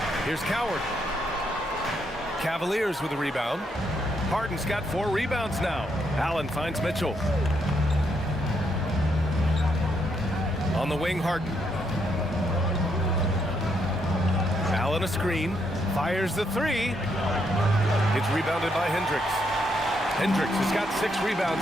Here's Coward. Cavaliers with a rebound. Harden's got 4 rebounds now. Allen finds Mitchell. On the wing, Harden. Allen a screen. Fires the 3. It's rebounded by Hendricks. Hendricks has got 6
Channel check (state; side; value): normal; both; correlation 0.76